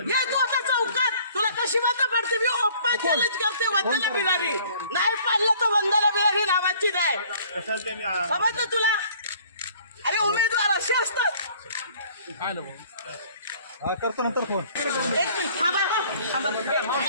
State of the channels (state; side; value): inverted; both; correlation -0.55